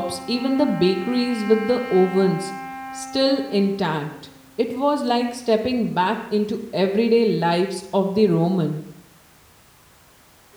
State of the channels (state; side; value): identical; both; correlation 1.00